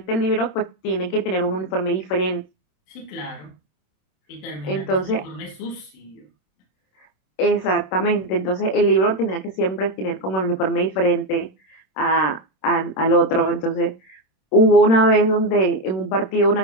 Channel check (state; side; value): late; right; 26 ms